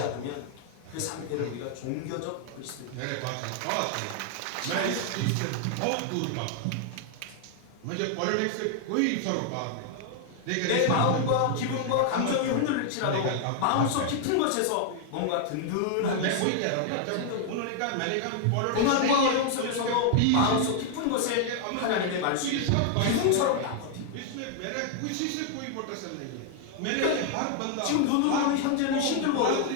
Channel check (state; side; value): different; both; correlation 0.00